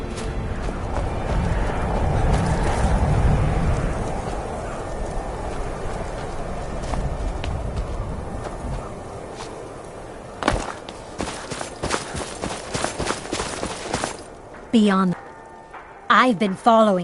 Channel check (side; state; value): both; identical; correlation 1.00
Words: Beyond. I've been